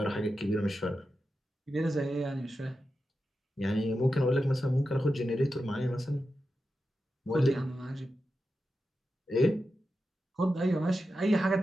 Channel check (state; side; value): normal; both; correlation 0.90